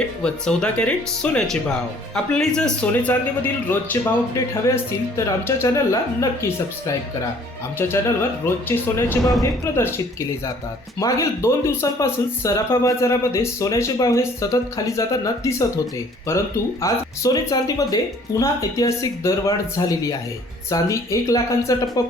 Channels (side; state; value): both; normal; correlation 0.56